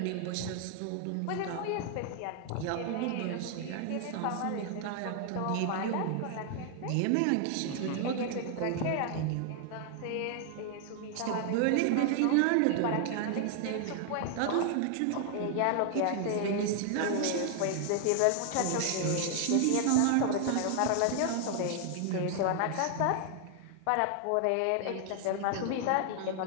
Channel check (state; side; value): different; both; correlation 0.00